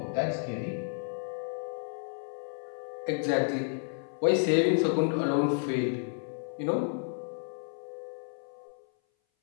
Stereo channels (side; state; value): right; silent; 57 dB below the other